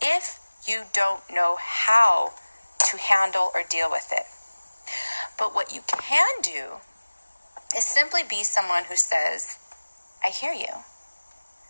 if you don't know how to handle or deal with it. But what you can do is simply be someone who says, I hear you.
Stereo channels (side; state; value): both; inverted; correlation -1.00